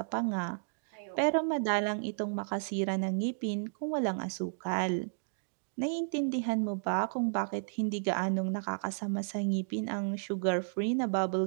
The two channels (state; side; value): silent; left; digital silence